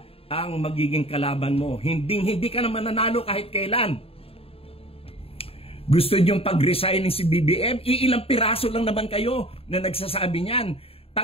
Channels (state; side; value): late; right; 0.28 ms